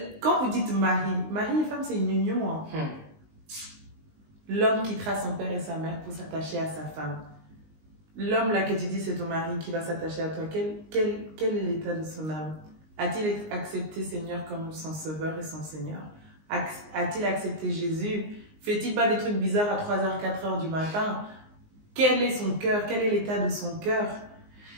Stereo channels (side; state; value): left; late; 19 ms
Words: quand vous dites mari et femme, c'est une union. Hein. L'homme quittera son père et sa mère pour s'attacher à sa femme. L'homme là que tu dis c'est ton mari qui va s'attacher à toi, quel est l'état de son âme? A-t-il accepté Seigneur comme son sauveur et son Seigneur? A-t-il accepté Jésus Fait-il pas des trucs bizarres à 3h, 4h du matin? Quel est son cœur? Quel est l'état de son cœur?